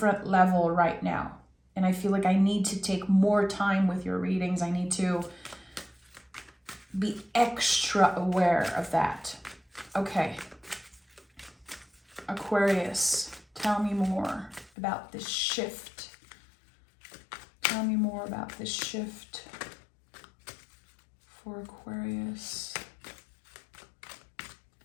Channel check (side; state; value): right; drops out; at 14.7 s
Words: level right now. And I feel like I need to take more time with your readings. I need to be extra aware of that. Okay. Aquarius, tell me more about this shift. Tell me more about this shift for Aquarius.